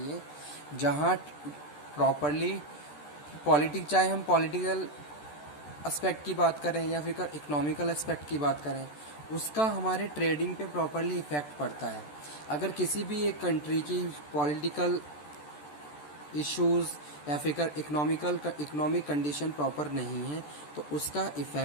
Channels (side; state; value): right; late; 14 ms